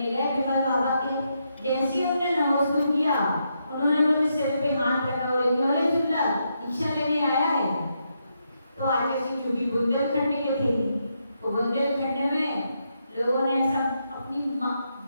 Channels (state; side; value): inverted; both; correlation -0.81